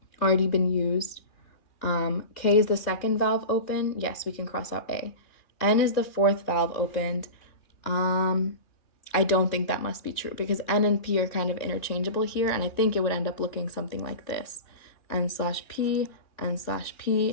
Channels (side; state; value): right; late; 2.8 ms